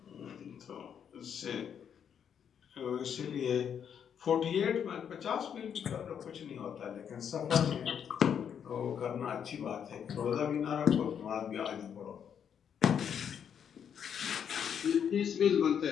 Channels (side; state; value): right; quieter; 8.1 dB